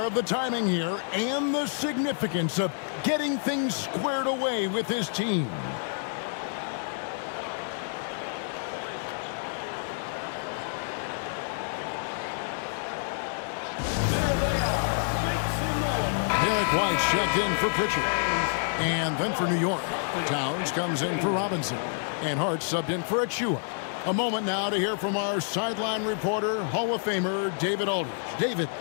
of the timing here and the significance of getting things squared away with his team. White's checked in for Pritchard. And then for New York, Towns comes in for Robinson. And Hart subbed in for Achua. A moment now to hear from our sideline reporter, Hall of Famer David Aldridge. David.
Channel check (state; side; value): silent; right; 57 dB below the other